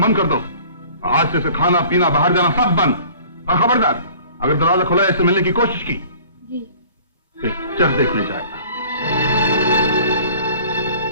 बंद कर दो। आज से इसे खाना पीना, बाहर जाना सब बंद। और खबरदार, अगर दरवाजा खुला इससे मिलने की कोशिश की, जी। पिक्चर देखने जाएगा।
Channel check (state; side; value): inverted; both; correlation -0.49